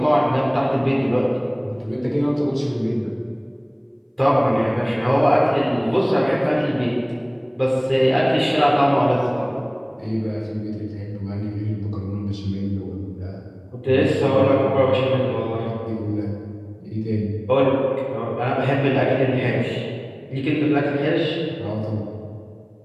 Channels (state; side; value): identical; both; correlation 1.00